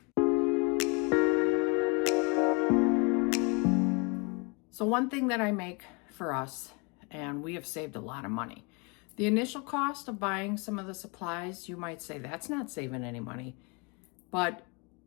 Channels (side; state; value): right; quieter; 31.4 dB